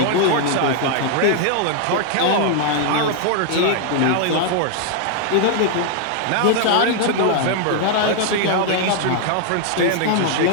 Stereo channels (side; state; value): both; different; correlation 0.00